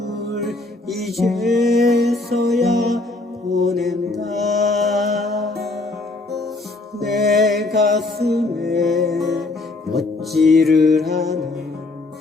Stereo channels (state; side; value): quieter; right; 3.1 dB